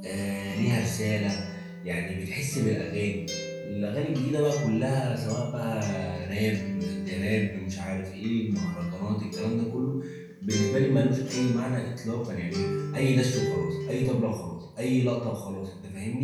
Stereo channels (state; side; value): identical; both; correlation 1.00